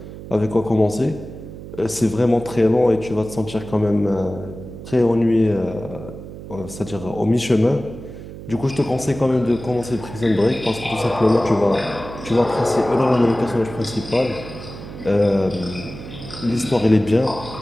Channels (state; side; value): noise; right; hum, 13 dB below the sound